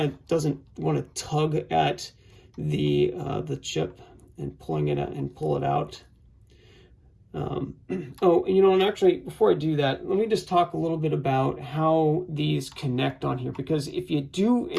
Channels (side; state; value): both; identical; correlation 1.00